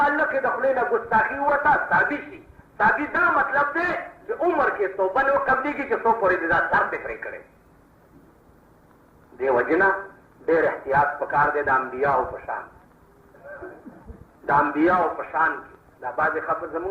یې د خولې نه ګستاخي ووته صحابي شي. صحابي دا مطلب دی چې عمر کې توبه نه قبلېږي چې څو پورې دې دا سر دې پرې کړی. دې وجې نه ډېر احتیاط پکار دی د انبیاو په شان. د انبیاو په شان کې دا بعضې خبر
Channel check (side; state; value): both; identical; correlation 1.00